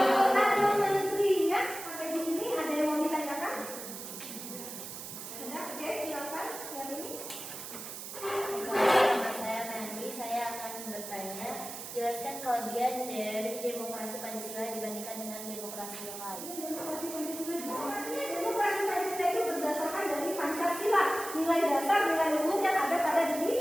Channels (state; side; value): noise; right; hiss, 9 dB below the sound